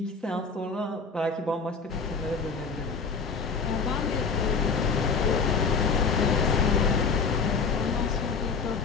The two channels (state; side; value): quieter; right; 4.9 dB